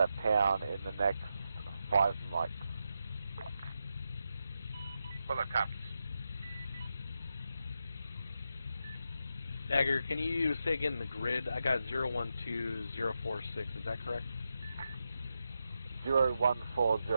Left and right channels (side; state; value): both; inverted; correlation -0.86